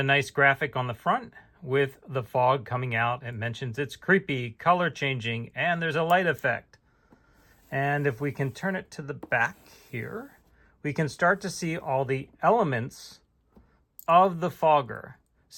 nice graphic on the front with the fog coming out. It mentions it's creepy, color changing, and there's a light effect. And if we can turn it to the back here, we can start to see all the elements of the fogger.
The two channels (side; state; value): both; identical; correlation 1.00